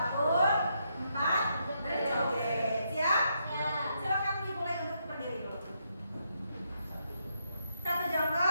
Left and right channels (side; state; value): both; inverted; correlation -0.78